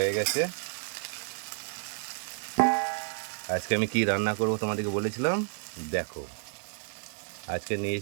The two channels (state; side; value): silent; left; 57 dB below the other